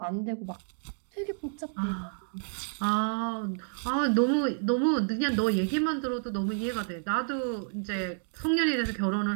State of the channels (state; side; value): silent; left; digital silence